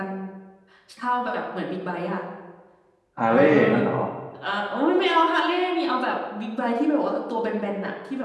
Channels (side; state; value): both; identical; correlation 1.00